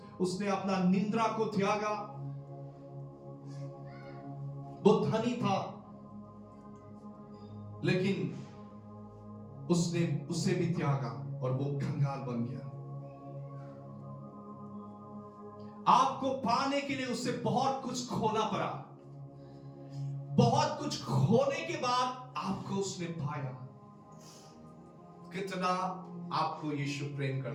उसने अपना निंद्रा को त्यागा। वो धनी था लेकिन उसने उसे भी त्यागा और वो कंगाल बन गया। आपको पाने के लिए उससे बहुत कुछ खोना पड़ा। बहुत कुछ खोने के बाद आपको उसने पाया। कितना आपको यीशु प्रेम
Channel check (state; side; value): identical; both; correlation 1.00